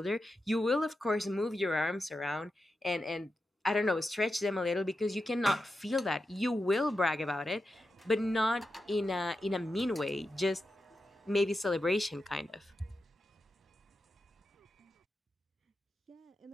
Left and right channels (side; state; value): both; normal; correlation 0.89